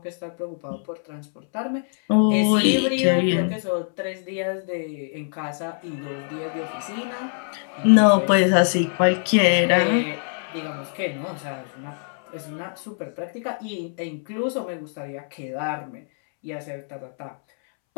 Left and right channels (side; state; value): right; silent; 63 dB below the other